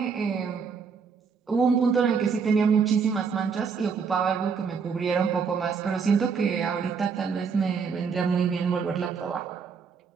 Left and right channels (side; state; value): left; quieter; 5.8 dB